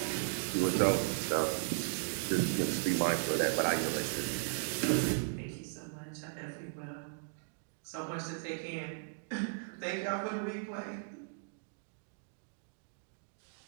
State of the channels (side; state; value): left; silent; digital silence